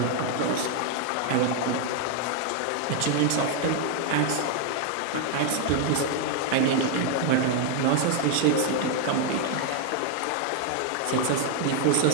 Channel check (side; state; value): both; different; correlation 0.00